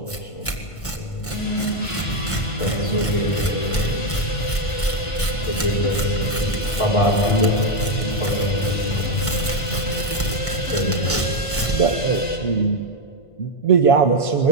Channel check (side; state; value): right; late; 1.5 ms